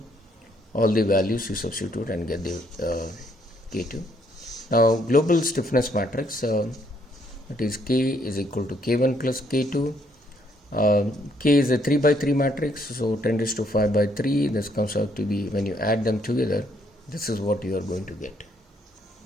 All the values you substitute and get the K2. Now global stiffness matrix, it is K is equal to K1 plus K2. K is a 3 by 3 matrix, so 10 raised to 5 by 3. This comes out to be, when you add them together, this is what you are going to get.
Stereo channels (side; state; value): both; normal; correlation 0.70